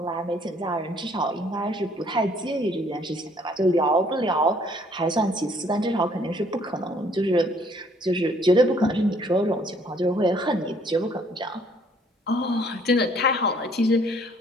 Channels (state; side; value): normal; both; correlation 0.62